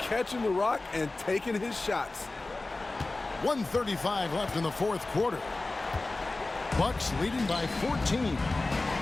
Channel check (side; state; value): right; quieter; 3.2 dB